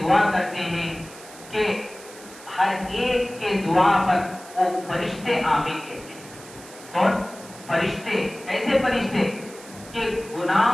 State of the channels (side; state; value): right; noise; hiss, 18 dB below the sound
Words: دعا کرتے ہیں، کہ ہر ایک کے دعا پر وہ فرشتے آمین کہتے ہیں۔ کون؟ فرشتے۔ ایسے فرشتے کہ